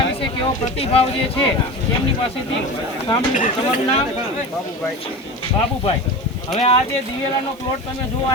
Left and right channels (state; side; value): noise; right; hiss, 28 dB below the sound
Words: વિશે કેવો પ્રતિભાવ જે છે એમની પાસેથી સાંભળ્યું। તમારું નામ? બાબુભાઈ। હવે આ જે દિવેલાનો પ્લોટ તમે જોવા